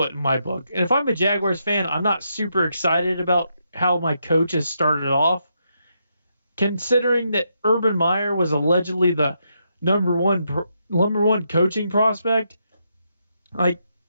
in my book. And if I'm a Jaguars fan, I'm not super excited about how my coach has started off. Considering that Urban Meyer was allegedly the number one coaching prospect, like,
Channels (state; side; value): inverted; both; correlation -0.80